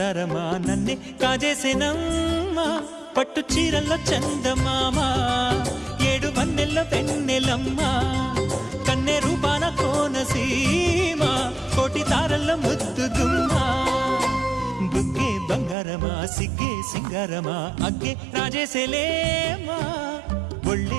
నన్నే కాజేసేనమ్మా పట్టు చీరల్లో చందమామా ఏడు వన్నెల్లో వెన్నెలమ్మా కన్నె రూపాన కోనసీమ కోటి తారల్లో ముద్దుగుమ్మా బుగ్గే బంగారమా సిగ్గే సింగారమా అగ్గే రాజేసేలేమా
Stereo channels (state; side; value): drops out; left; at 15.8 s